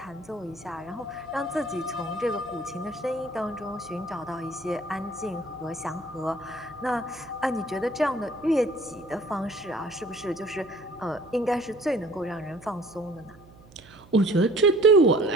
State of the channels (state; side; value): noise; right; hum, 23 dB below the sound